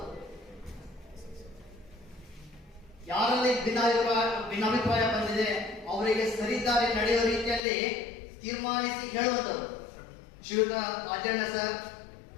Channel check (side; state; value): right; drops out; at 7.6 s